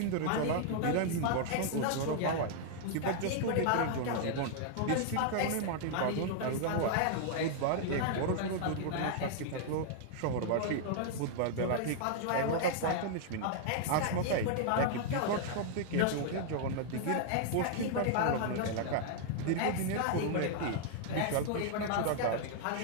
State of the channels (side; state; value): both; different; correlation -0.01